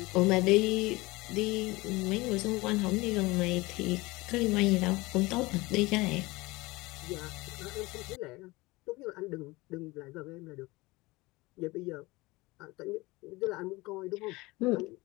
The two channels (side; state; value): right; quieter; 22.0 dB